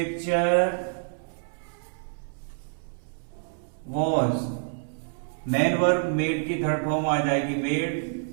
was. Main verb made की थर्ड फॉर्म आ जाएगी मेड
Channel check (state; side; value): silent; left; 60 dB below the other